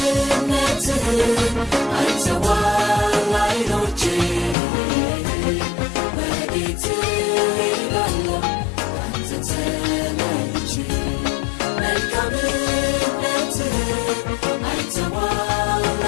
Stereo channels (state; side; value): drops out; right; at 4.5 s